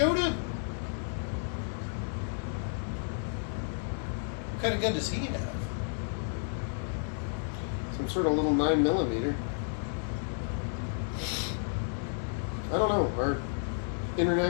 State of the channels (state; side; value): silent; right; digital silence